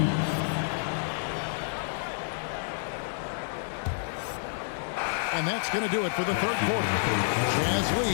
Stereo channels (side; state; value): right; silent; 55 dB below the other